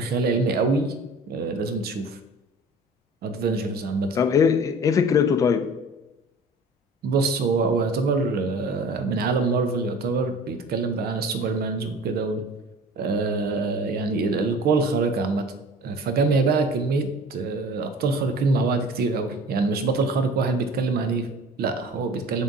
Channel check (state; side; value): normal; both; correlation 0.43